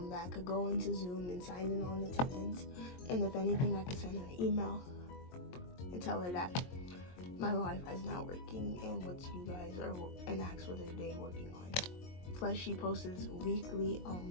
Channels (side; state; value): right; late; 22 ms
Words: that I could go into Zoom and sign in on attendance. And if anything, I could send her an email and tell her that my Wi-Fi is not working and what you guys are, and ask what they're working on. Plus, she posts weekly